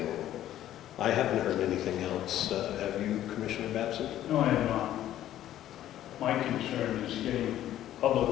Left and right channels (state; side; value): quieter; right; 12.5 dB